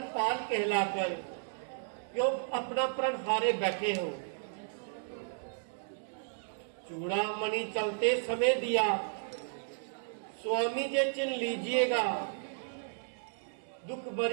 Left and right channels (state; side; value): silent; left; digital silence